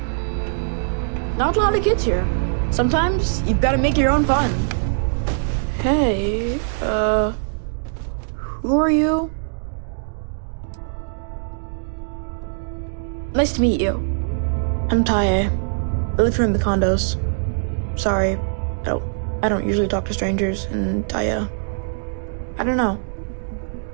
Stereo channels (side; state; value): left; silent; digital silence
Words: Not a lot of kids here. Sometimes you've got to make your own fun. Hey, who are you? Nice to meet you. I'm Tae. I live here in the condos. Sorry, I don't usually talk to strangers, and I don't know.